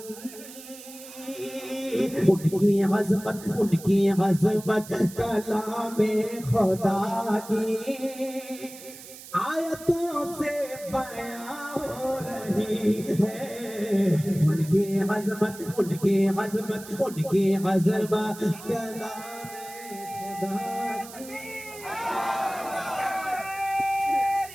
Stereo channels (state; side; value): noise; right; hiss, 16 dB below the sound